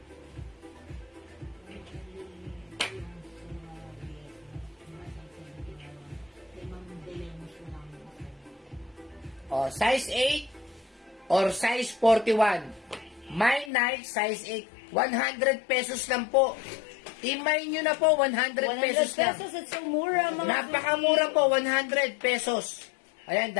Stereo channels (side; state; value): right; drops out; at 13.7 s